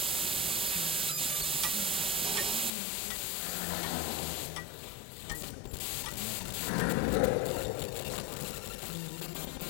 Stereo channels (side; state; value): right; drops out; at 2.7 s